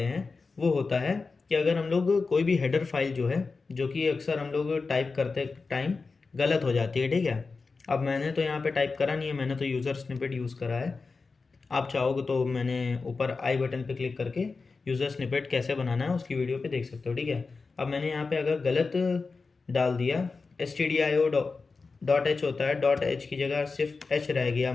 हैं वो होता है कि अगर हम लोग कोई भी हेडर फाइल जो है, जो कि अक्सर हम लोग टाइप करते टाइम गलत हो जाती है। ठीक है, अब मैंने तो यहाँ पे टाइप करा नहीं है, मैंने तो यूज़र स्निपेट यूज़ करा है। आप चाहोगे तो मैंने ऊपर आई बटन पे क्लिक करके यूज़र स्निपेट कैसे बनाना है उसकी वीडियो पे देख सकते हो। ठीक है, अब मैंने यहाँ पे अगर गलत डाल दिया, stdio.h होता है, डॉट एच की जगह सिर्फ एच रह गया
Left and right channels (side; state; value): right; quieter; 4.3 dB